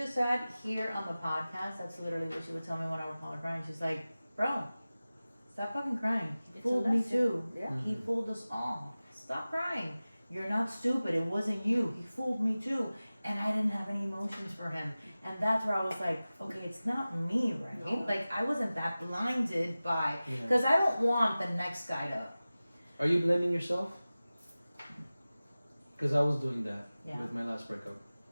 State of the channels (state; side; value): inverted; both; correlation -0.97